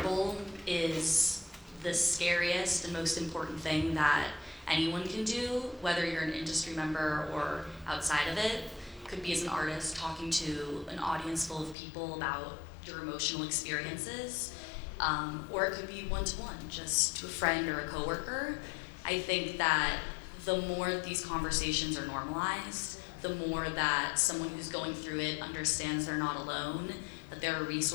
is the scariest and most important thing that anyone can do, whether you're an industry member or outside of it. Could be as an artist talking to an audience full of people about your emotional experiences, or it could be one-to-one, just to a friend or a coworker. I think that the more these conversations are normalized, the more that someone who's going through it understands they're not alone, that there are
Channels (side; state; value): right; drops out; at 11.8 s